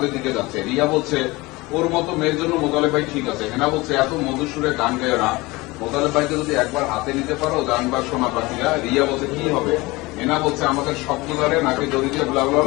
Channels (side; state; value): right; quieter; 22.2 dB